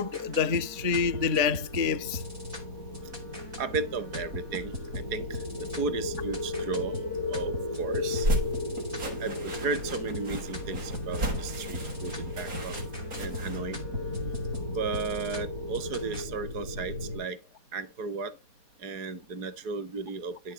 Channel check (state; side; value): late; left; 4.2 ms